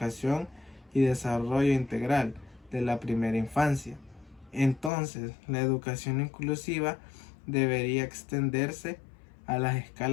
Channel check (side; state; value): right; drops out; at 4.9 s